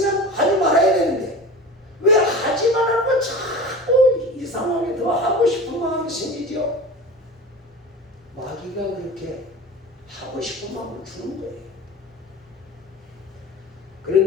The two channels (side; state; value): both; normal; correlation 0.34